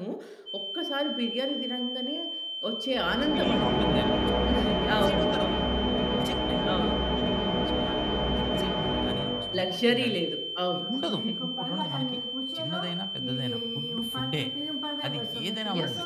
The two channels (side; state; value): both; identical; correlation 1.00